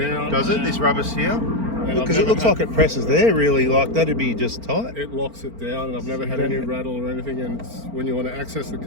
does it? This rubber seal? And Because it looks like it presses there. Really, like that'd be just tight. It locks it down, and I've never had any rattle or anything. And it's, when you want to access the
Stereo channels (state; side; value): late; left; 4.4 ms